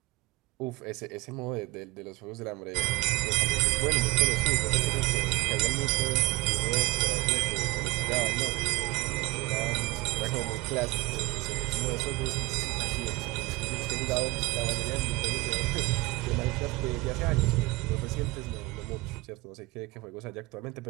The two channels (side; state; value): left; quieter; 21.8 dB